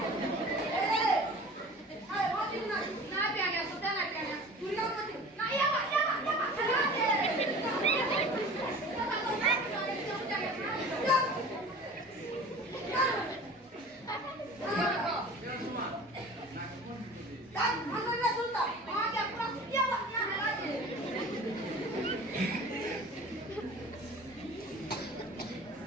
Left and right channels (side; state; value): both; normal; correlation 0.41